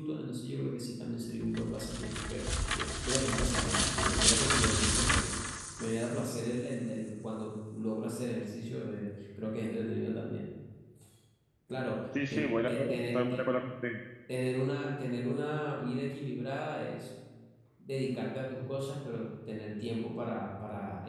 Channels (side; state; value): both; identical; correlation 1.00